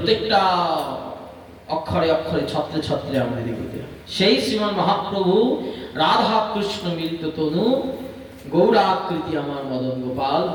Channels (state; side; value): identical; both; correlation 1.00